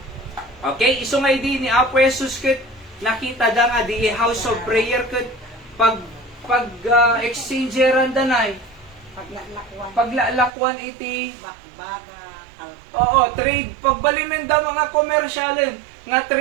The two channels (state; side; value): drops out; left; at 10.5 s